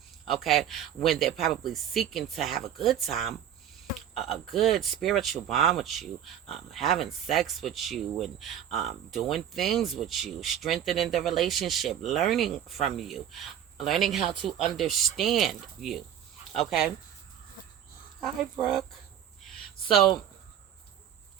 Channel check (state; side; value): quieter; left; 10.0 dB